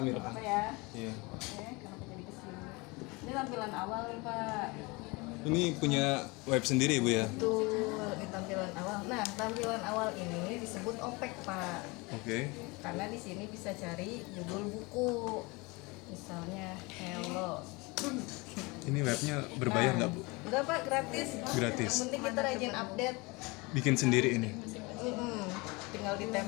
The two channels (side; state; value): right; quieter; 25.8 dB